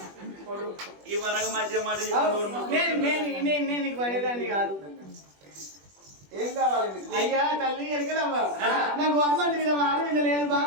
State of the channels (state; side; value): late; left; 21 ms